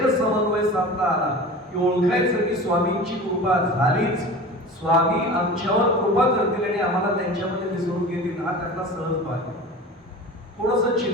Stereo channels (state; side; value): normal; both; correlation 0.35